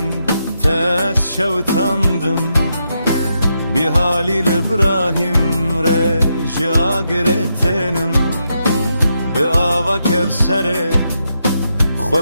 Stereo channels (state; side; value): inverted; both; correlation -0.82